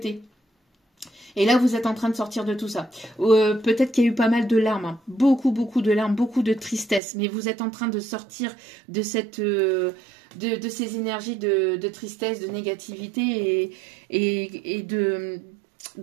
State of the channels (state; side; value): drops out; left; at 7.0 s